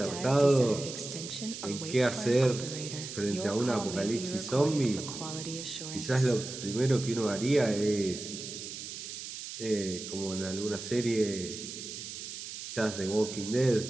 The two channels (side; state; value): right; noise; hiss, 9 dB below the sound